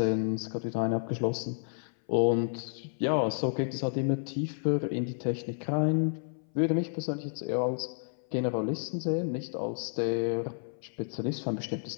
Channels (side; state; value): right; silent; 56 dB below the other